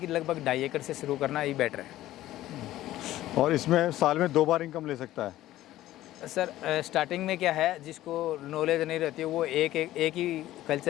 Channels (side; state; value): right; quieter; 14.8 dB